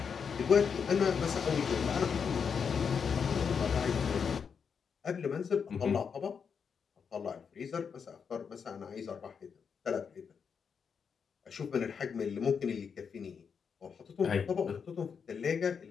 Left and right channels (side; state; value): right; quieter; 6.4 dB